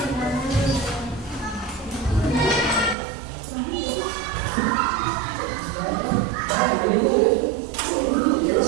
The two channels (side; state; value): left; drops out; at 3.0 s